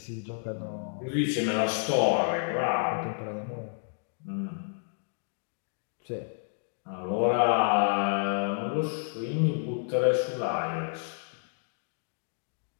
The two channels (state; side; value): silent; right; digital silence